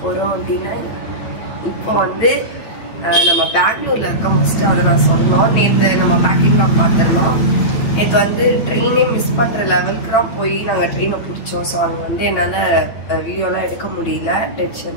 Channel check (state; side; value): late; right; 9.2 ms